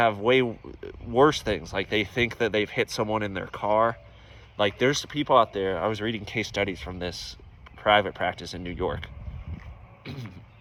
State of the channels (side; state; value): both; identical; correlation 1.00